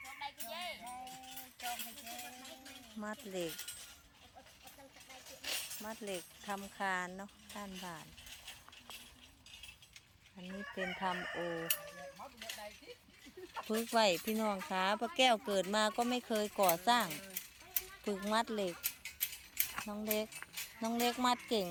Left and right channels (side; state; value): both; identical; correlation 1.00